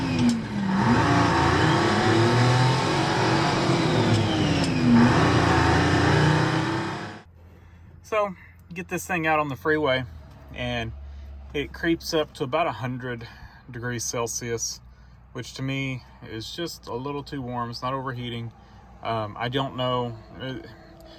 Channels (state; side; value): identical; both; correlation 1.00